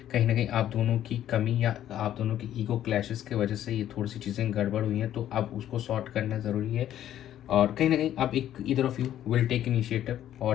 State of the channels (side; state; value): right; quieter; 11.6 dB